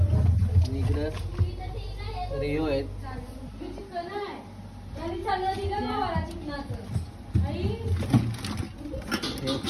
इकडे रिओ आहेत.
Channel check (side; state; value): both; identical; correlation 1.00